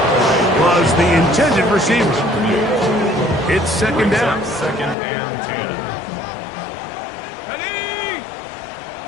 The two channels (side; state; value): right; drops out; at 5.0 s